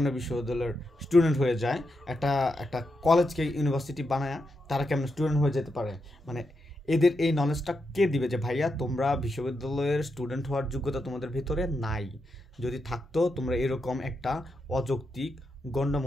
বিশ্ববিদ্যালয়ের স্টুডেন্ট হয়ে যায়, একটা একটা কলেজকে ইউনিভার্সিটি বানায় তারা কেমন স্টুডেন্ট হয়ে যেতে পারে? মানে এদের এই নলেজটা কে দিবে যে ভাইয়া তোমরা বিশ্ববিদ্যালয়ের স্টুডেন্ট হওয়ার যোগ্যতা তোমাদের ভিতরে নাই? যদি থাকতো তোমরা এরকম একটা অযৌক্তিক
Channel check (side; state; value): both; normal; correlation 0.85